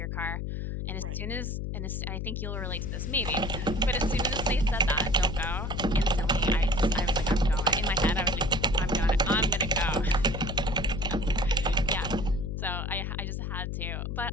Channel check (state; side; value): noise; left; hum, 3 dB below the sound